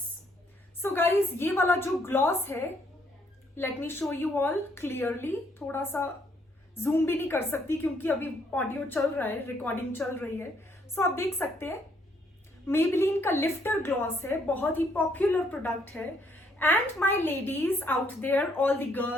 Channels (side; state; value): both; normal; correlation 0.69